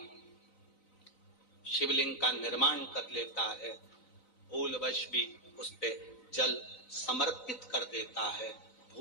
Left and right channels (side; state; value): right; late; 3.9 ms